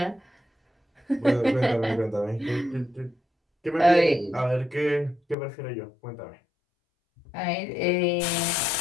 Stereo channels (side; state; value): right; drops out; at 5.4 s